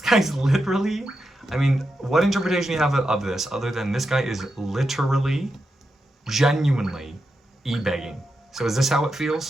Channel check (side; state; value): both; normal; correlation 0.87